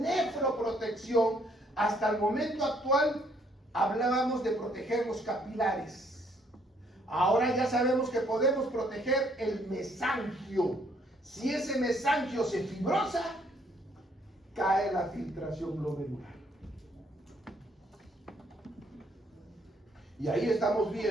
hasta el momento actual hablábamos de proteger los capilares. Ahora ya sabemos que podemos proteger el mesangio. Si ese mesangio se fibrosa, cae la filtración glomerular. Y ahí estamos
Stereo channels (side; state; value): both; normal; correlation 0.67